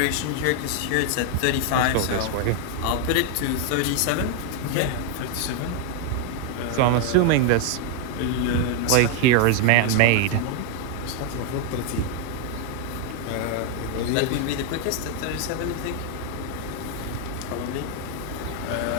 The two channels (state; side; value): different; both; correlation 0.00